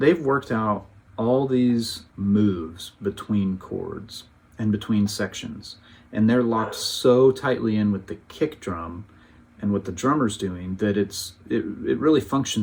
worked out all these moves between chords and between sections, and they're locked so tightly in with the kick drum and what the drummer's doing that it really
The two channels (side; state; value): both; identical; correlation 1.00